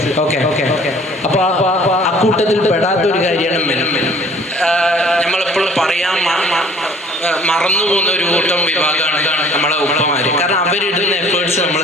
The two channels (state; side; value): normal; both; correlation 0.53